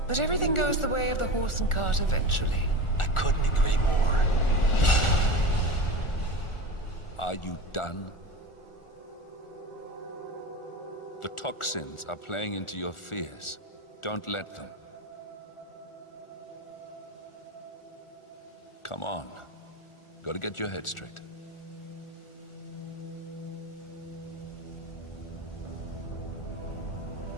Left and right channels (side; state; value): right; late; 1.4 ms